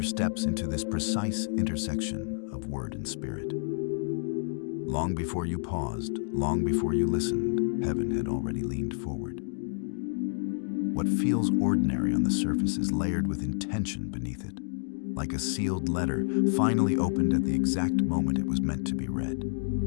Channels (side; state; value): right; silent; digital silence